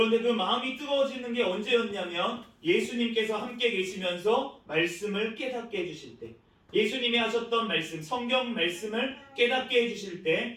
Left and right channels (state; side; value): identical; both; correlation 1.00